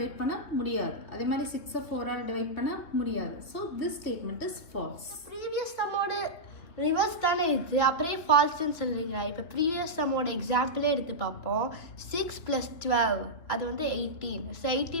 பண்ண முடியாது. அதே மாதிரி 6ஐ 4ஆல் டிவைட் பண்ண முடியாது. So this statement is false. Previous சம்மோட ரிவர்ஸ் தானே இது, அப்படியே ஃபால்ஸ்ன்னு சொல்கிறீங்க. இப்போ ப்ரீவியஸ் சம்மோட எக்ஸாம்பிளே எடுத்து பார்ப்போம். 6 + 12 அது வந்து 18. ஸோ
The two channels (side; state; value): right; late; 3.0 ms